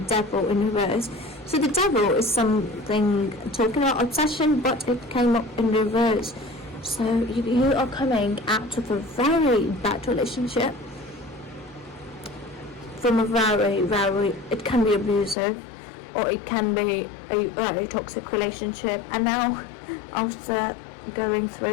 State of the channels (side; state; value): right; drops out; at 15.4 s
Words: Devil in reverse. So the Devil is something talking about obsession, but it came up in reverse. So you are coming out of a very bad relationship, from a very, it can be abusive, or it can be a very toxic relationship, and now after going